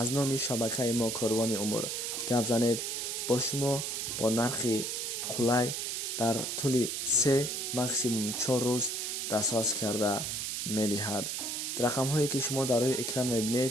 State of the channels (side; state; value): right; noise; hiss, 2 dB below the sound